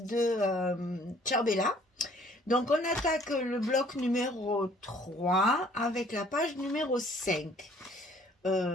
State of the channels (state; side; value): normal; both; correlation 0.58